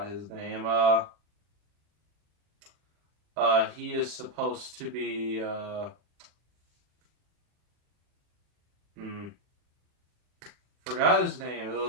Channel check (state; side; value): late; left; 40 ms